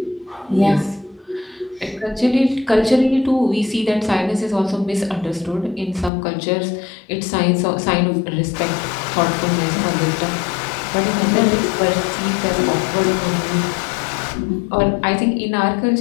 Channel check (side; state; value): right; drops out; at 6.1 s